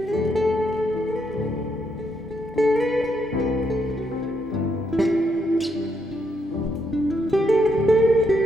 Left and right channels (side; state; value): both; normal; correlation 0.77